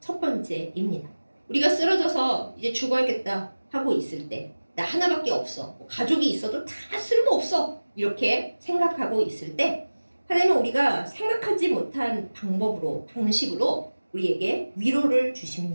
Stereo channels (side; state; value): both; inverted; correlation -1.00